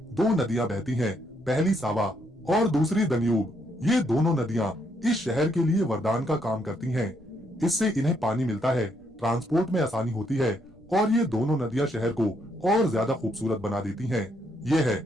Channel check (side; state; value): left; noise; rumble, 29 dB below the sound